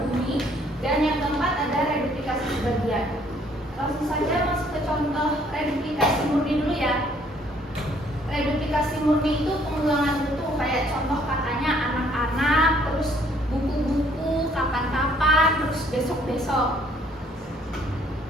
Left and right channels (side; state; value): both; normal; correlation 0.63